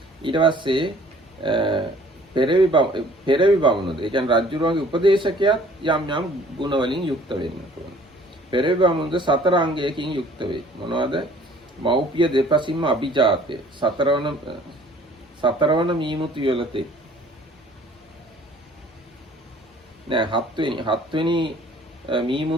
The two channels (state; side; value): normal; both; correlation 0.54